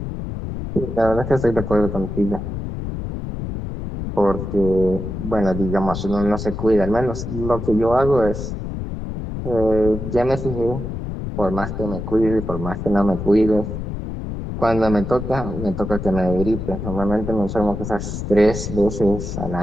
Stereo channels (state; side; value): noise; left; rumble, 6 dB below the sound